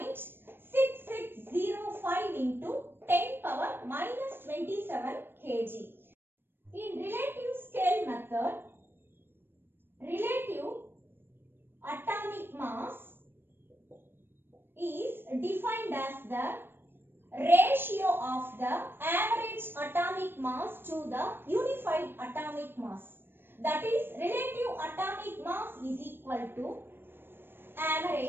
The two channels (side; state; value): left; late; 0.10 ms